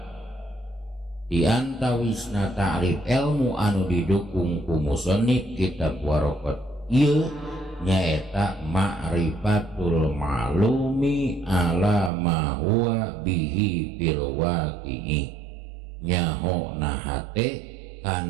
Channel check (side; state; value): left; drops out; at 12.1 s